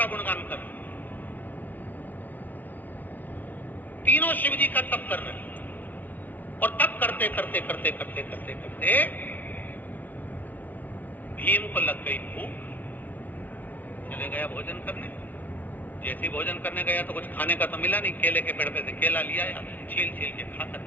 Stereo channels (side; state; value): right; late; 0.080 ms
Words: गुणगान कर रहे हैं, तीनों शिव जी का तप कर रहे हैं। और तप करते करते करते करते करते करते भीम को लग गई भूख, चले गया भोजन करने। जैसे भोजन करने गया तो कुछ खाने का तो मिला नहीं, केले के पेड़ पे से केला लिया या छील छील के खाकर